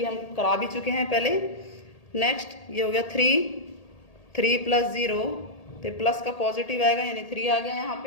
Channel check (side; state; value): right; late; 1.8 ms